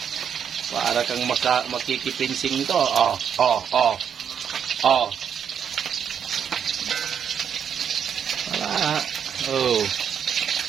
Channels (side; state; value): left; quieter; 8.0 dB